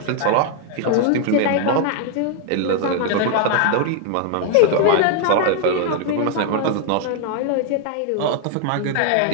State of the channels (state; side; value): different; both; correlation 0.00